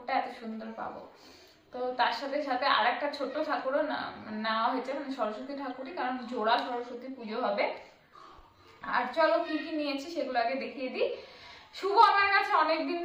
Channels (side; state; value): both; identical; correlation 1.00